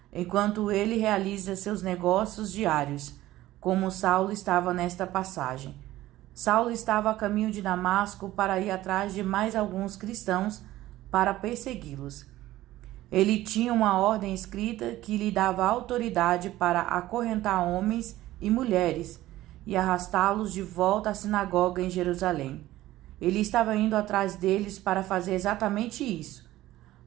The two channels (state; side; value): quieter; left; 15.7 dB